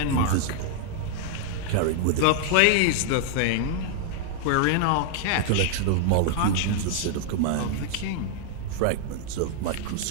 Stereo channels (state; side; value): different; both; correlation -0.01